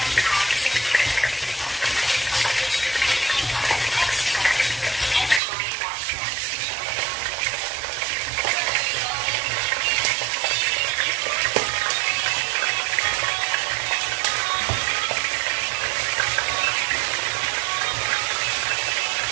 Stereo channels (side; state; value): left; drops out; at 5.4 s